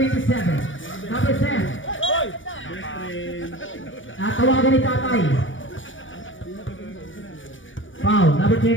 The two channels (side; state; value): right; late; 0.56 ms